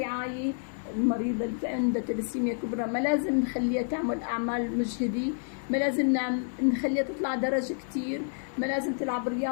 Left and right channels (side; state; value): right; silent; 58 dB below the other